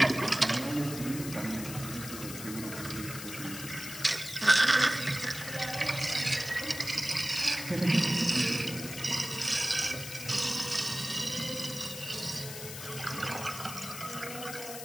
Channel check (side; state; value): left; noise; hiss, 9 dB below the sound